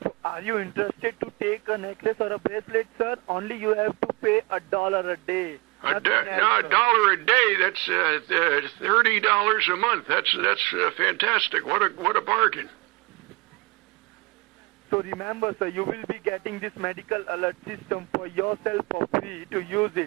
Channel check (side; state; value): left; quieter; 25.6 dB